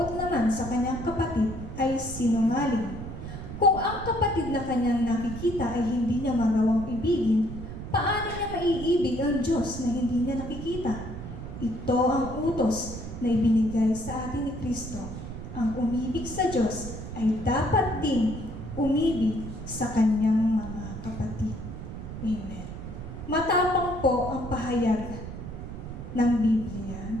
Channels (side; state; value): right; noise; rumble, 9 dB below the sound